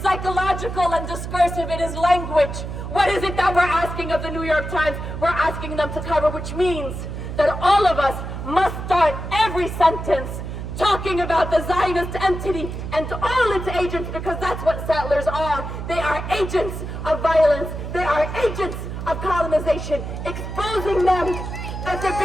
and discursive. It is language. What is it that we're asking of the New York Times? We're asking them to cover, which means that all of us must start every sentence, talking about the Zionist entity and all its agents, because that's what settlers are. They are agents of violence. They are agents of colonization, exposing them at the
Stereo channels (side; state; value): right; noise; hum, 7 dB below the sound